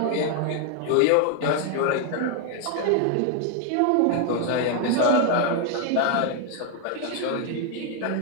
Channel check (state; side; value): different; both; correlation 0.00